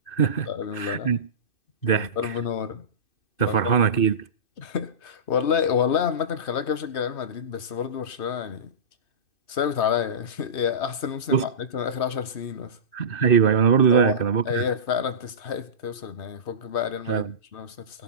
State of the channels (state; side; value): late; right; 2.6 ms